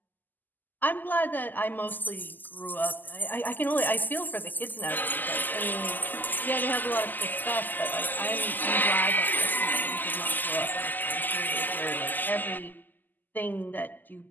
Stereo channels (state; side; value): late; right; 0.087 ms